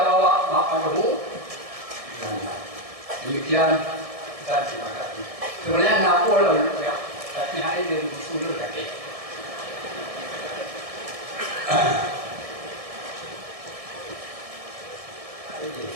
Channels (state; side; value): late; left; 1.6 ms